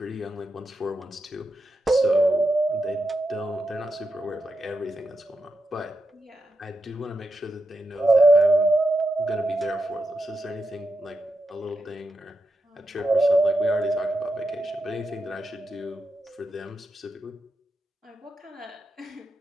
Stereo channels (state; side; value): normal; both; correlation 0.86